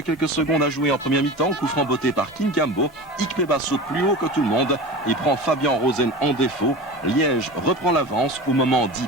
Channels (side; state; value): both; normal; correlation 0.31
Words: secondes à jouer en première mi-temps. Coup franc botté par Kinkambo. Ikpeba saute plus haut que tout le monde et prend Fabien Rosen en défaut. Liège reprend l'avance au moment dit